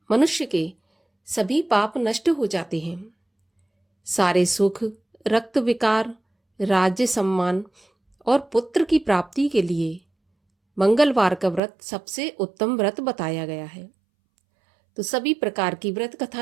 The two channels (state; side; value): drops out; left; at 11.6 s